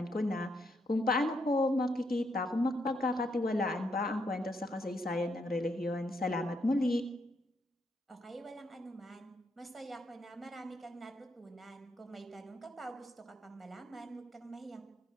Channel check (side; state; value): both; normal; correlation 0.77